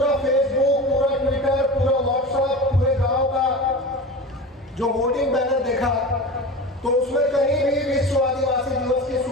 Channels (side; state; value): both; normal; correlation 0.30